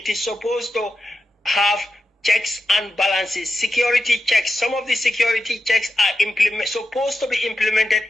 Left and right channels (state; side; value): normal; both; correlation 0.90